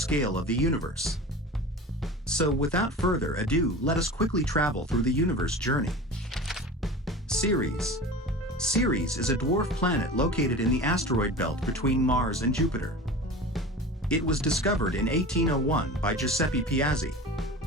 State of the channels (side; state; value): both; normal; correlation 0.35